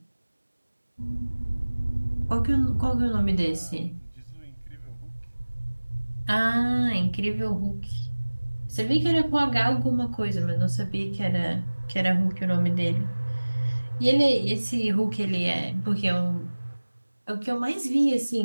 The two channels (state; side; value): inverted; both; correlation -1.00